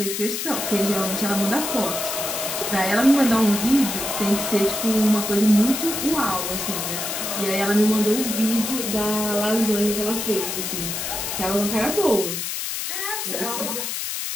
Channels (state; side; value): noise; left; hiss, 3 dB below the sound